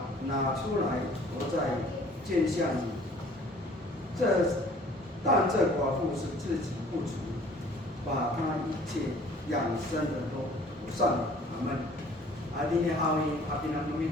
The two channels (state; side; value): normal; both; correlation 0.53